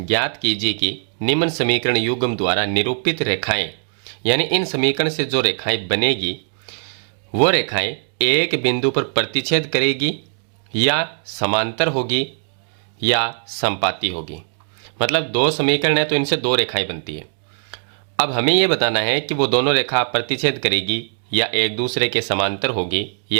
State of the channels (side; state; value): left; silent; digital silence